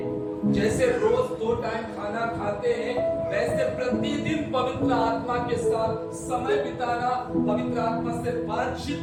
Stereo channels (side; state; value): both; identical; correlation 1.00